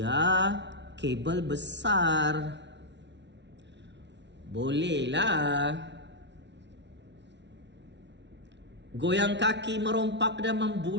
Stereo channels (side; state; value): left; late; 0.51 ms